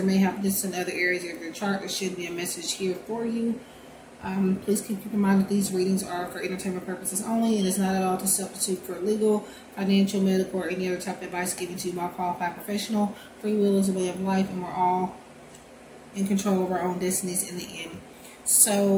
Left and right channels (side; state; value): both; identical; correlation 1.00